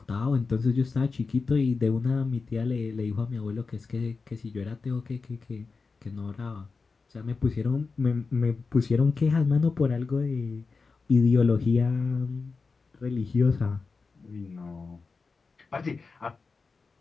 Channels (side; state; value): right; quieter; 4.4 dB